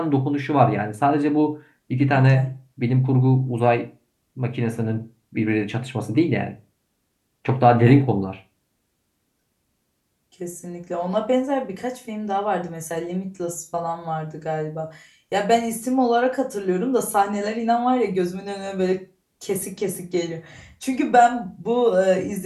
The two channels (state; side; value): identical; both; correlation 1.00